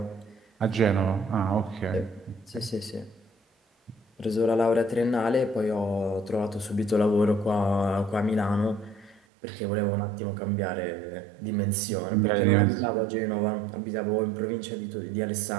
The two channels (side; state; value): left; drops out; at 9.2 s